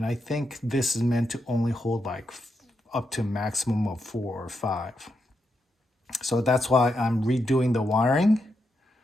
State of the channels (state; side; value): normal; both; correlation 0.83